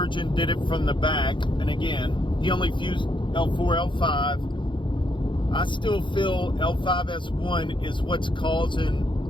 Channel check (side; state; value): right; late; 0.23 ms